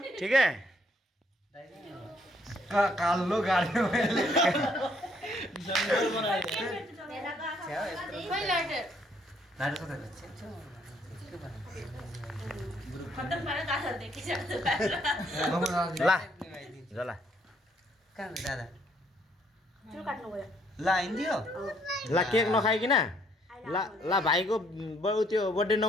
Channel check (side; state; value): both; normal; correlation 0.67